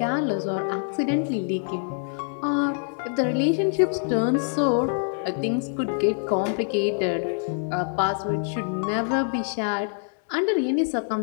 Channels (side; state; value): right; silent; digital silence